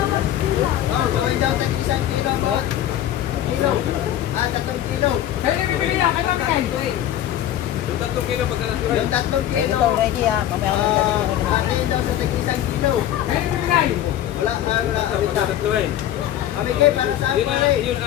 kilo. Oh, gawin daw tag 1 kilo ang bawat kilo. Ah, 3 kilo. Kaya na bibili niya, kaya Mami Kay. Yung 3 kilo pagka Yung 3 kilo. Ito, ready ah. Mamaya ako Akin daw sa tag 1 kilo. Kaya na bibigay. Wala, wala. tatlo eh. Mami Kay, para saan Yun pa ang, rin? yun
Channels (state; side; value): quieter; right; 11.9 dB